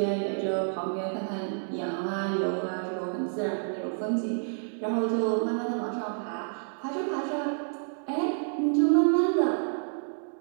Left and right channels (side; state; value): left; silent; digital silence